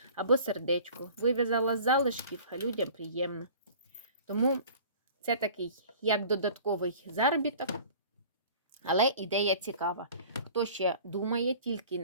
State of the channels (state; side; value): inverted; both; correlation -0.46